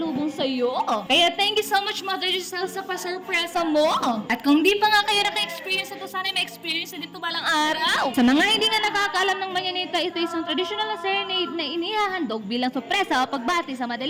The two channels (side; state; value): both; identical; correlation 1.00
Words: sa'yo. Kaya thank you so much, Mother Giselle, sa pasurpresa mo. At kung di pa nga kayo naka-experience ito, sana may experience na dito balang araw. Sa mga hindi nga nakakaalam ng manyanita, ito isang traditional na serenade na inihahandog bilang sorpresa o pagbati sa